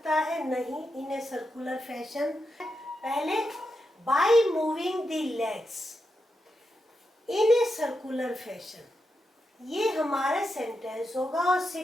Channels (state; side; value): normal; both; correlation 0.86